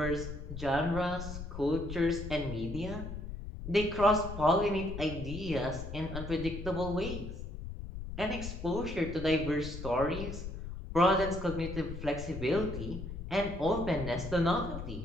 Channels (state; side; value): noise; left; rumble, 8 dB below the sound